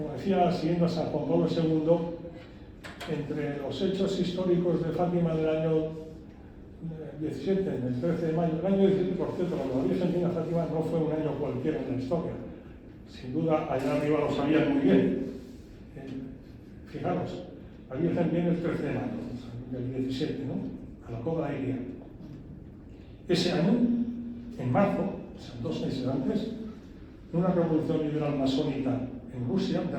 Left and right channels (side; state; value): both; identical; correlation 1.00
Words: decía, siguiendo a San Juan Pablo II, entre los hechos históricos de Fátima del año 17, del 13 de mayo, el año 17, por cierto, cuando la Virgen vino a Fátima no fue un año cualquiera en la historia. Sin duda, allá arriba lo sabían muy bien. Fijaros, la Virgen viene el 13 de mayo, del 17, ¿no? A la Cova de Iria. Ese año, en marzo, o sea, 2 meses antes, una revolución liberal masónica en Rusia